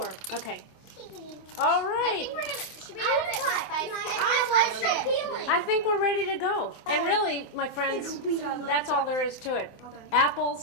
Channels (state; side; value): late; right; 25 ms